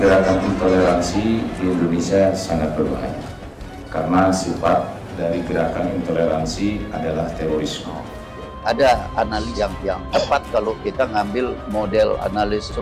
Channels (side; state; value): both; identical; correlation 1.00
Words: Intoleransi di Indonesia sangat berbahaya karena sifat dari gerakan intoleransi adalah terorisme. Ada analis yang tepat kalau kita ngambil model analis